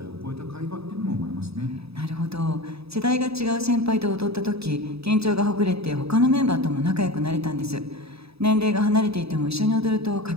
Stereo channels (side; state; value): left; late; 0.78 ms